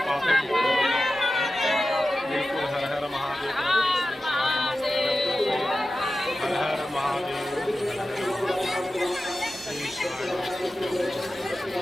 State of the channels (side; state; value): both; normal; correlation 0.94